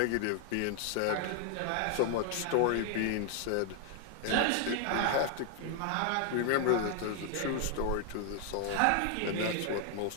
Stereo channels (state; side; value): different; both; correlation 0.00